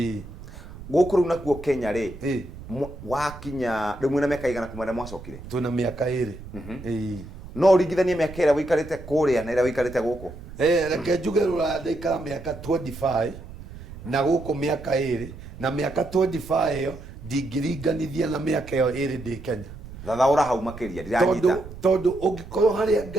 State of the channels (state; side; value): noise; right; rumble, 14 dB below the sound